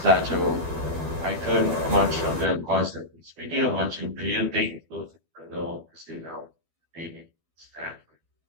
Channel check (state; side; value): late; left; 12 ms